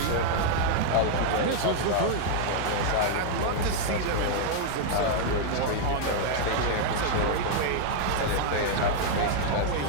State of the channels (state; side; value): different; both; correlation -0.01